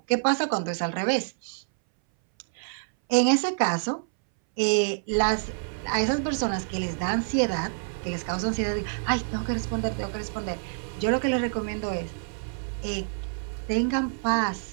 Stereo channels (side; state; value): left; silent; 60 dB below the other